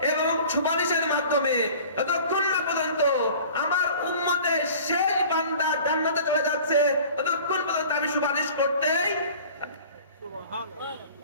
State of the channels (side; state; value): both; inverted; correlation -0.45